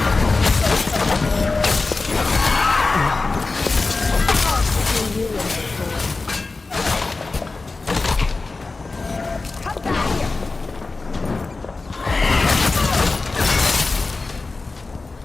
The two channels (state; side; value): quieter; right; 3.7 dB